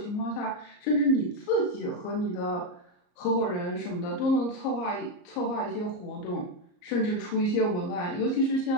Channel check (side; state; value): right; late; 34 ms